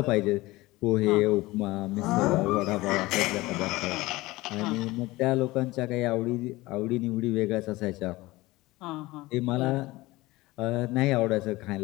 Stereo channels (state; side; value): quieter; right; 19.8 dB